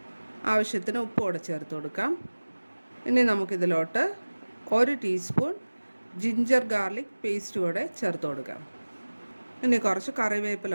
ആവശ്യത്തിന് ഉപ്പോടെ ചേർത്ത് കൊടുക്കാം. ഇനി നമുക്കിതിലോട്ട് 1 ടീസ്പൂൺ ജിഞ്ചർ ഗാർലിക് പേസ്റ്റ് കൂടെ ചേർത്ത് കൊടുക്കാം. ഇനി കുറച്ച്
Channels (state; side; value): inverted; both; correlation -1.00